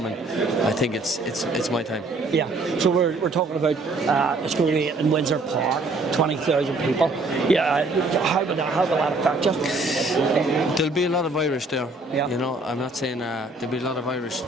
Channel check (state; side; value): quieter; left; 3.1 dB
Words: I think it's my time. Yeah. So we're talking about it's going to be in Windsor Park, 20,000 people. Yeah. How will that affect you? There'll be a lot of Irish there. Yeah. You know, I'm not saying there'll be a lot of Irish